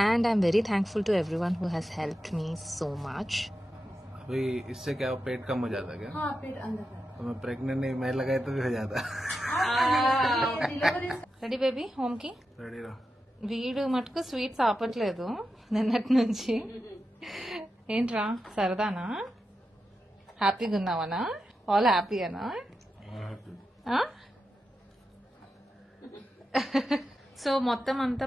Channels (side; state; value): both; normal; correlation 0.89